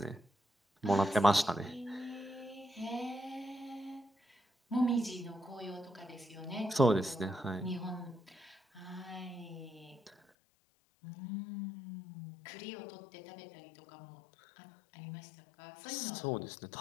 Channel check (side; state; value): right; drops out; at 10.2 s